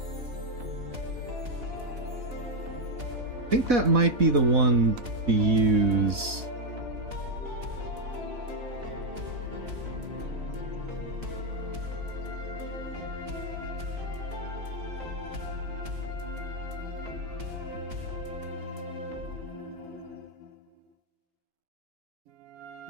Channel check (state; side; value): late; left; 4.1 ms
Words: I think that might be the one to use.